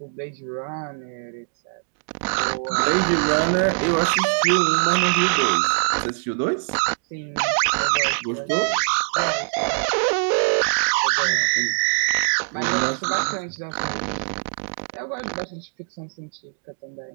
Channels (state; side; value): silent; left; digital silence